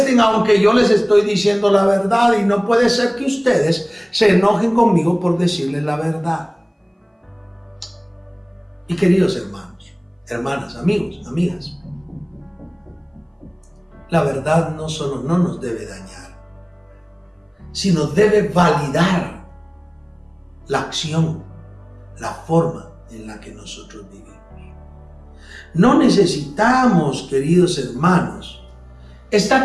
aunque yo les estoy diciendo la verdad, y no puede ser que ustedes se enojen conmigo por decirles la verdad. Y queridos hermanos, hermanas, amigos, amigas, la verdad no solo no nos debe dañar, sino debe validar la acción, la forma en la que nosotros vivimos. No necesitamos, queridos hermanos,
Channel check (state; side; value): identical; both; correlation 1.00